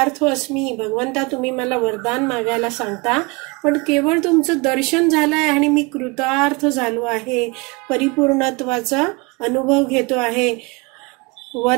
अस्मी, भगवंता तुम्ही मला वरदान मागायला सांगता, पण केवळ तुमचं दर्शन झालंय आणि मी कृतार्थ झालो आहे, परिपूर्णत्वाचा अनुभव घेतो आहे.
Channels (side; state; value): left; quieter; 27.2 dB